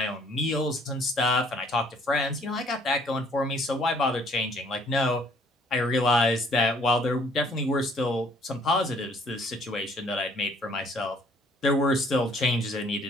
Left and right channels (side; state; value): both; normal; correlation 0.61